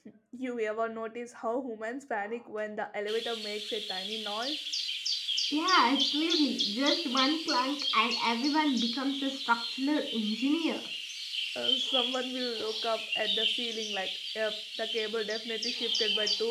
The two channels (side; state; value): both; identical; correlation 1.00